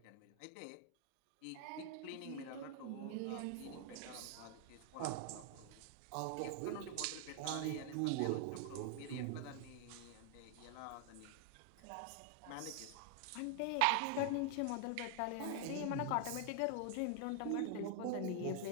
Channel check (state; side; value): different; both; correlation 0.00